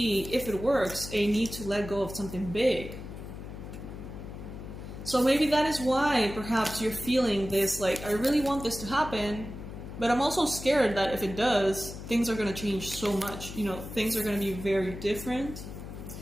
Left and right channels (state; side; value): noise; left; hum, 11 dB below the sound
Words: if it works, a need to let go of something big. So maybe that is why perhaps you're feeling this, like, I really want this to happen, but I'm also scared that if it does, things are going to change so much. You know, things are going to be very different.